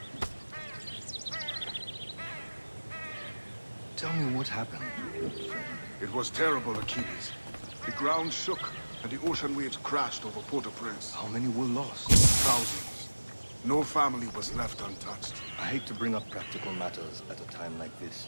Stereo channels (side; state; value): both; inverted; correlation -1.00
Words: Tell me what happened. It was terrible, Achilles. The ground shook, and the ocean waves crashed over Port-au-Prince. How many were lost? Thousands. No family was left untouched. I hate to bring up practical matters at a time like this.